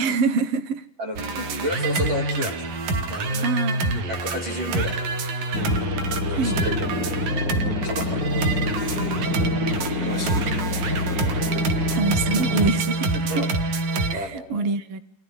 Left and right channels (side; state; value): left; late; 11 ms